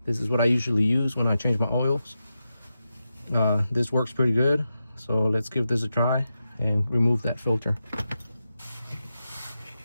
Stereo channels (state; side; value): inverted; both; correlation -0.90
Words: This is what I usually use when I change my oils. This works pretty good, so let's give this a try and remove that filter.